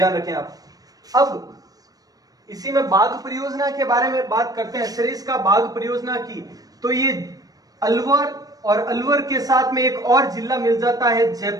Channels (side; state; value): left; late; 0.18 ms